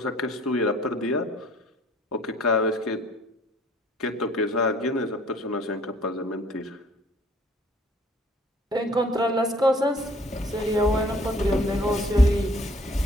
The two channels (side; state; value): both; normal; correlation 0.57